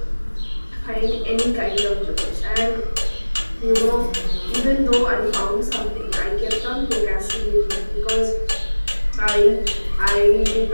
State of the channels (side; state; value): both; inverted; correlation -1.00